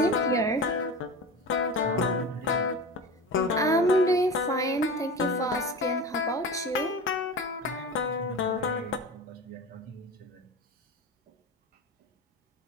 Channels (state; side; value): normal; both; correlation 0.30